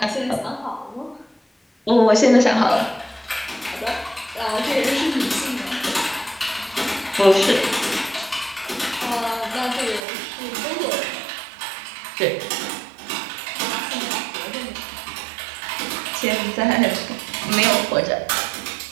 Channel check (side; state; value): left; drops out; at 10.0 s